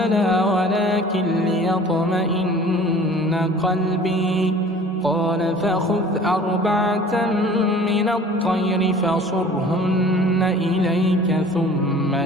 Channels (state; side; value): normal; both; correlation 0.47